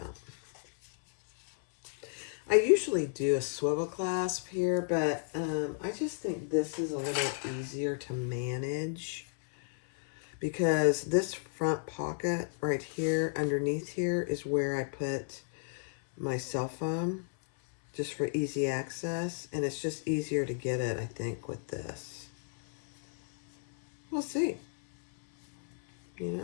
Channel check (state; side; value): silent; right; 56 dB below the other